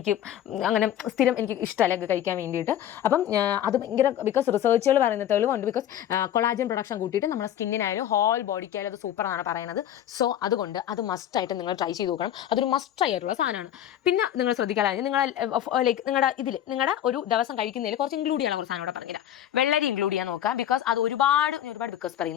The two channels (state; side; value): quieter; right; 11.1 dB